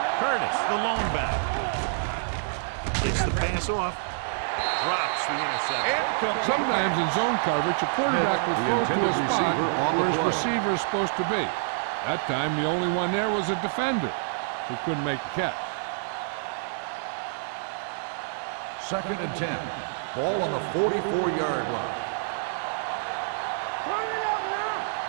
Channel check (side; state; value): left; silent; digital silence